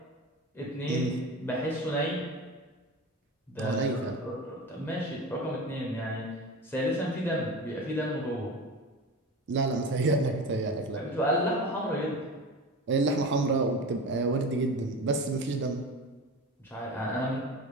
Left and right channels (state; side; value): normal; both; correlation 0.30